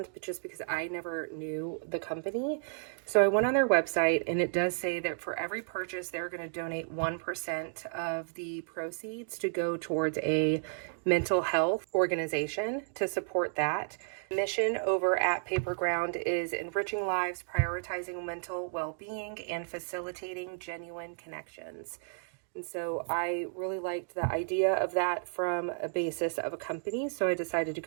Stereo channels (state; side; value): silent; left; digital silence